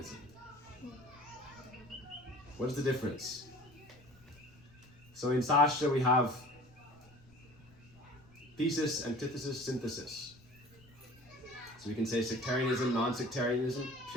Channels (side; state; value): left; noise; rumble, 25 dB below the sound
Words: What is the difference? So in Sastra we have thesis, antithesis, synthesis. So we can say sectarianism, non-sectarianism,